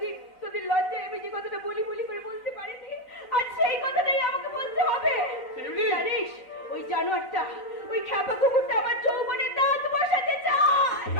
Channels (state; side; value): late; right; 4.0 ms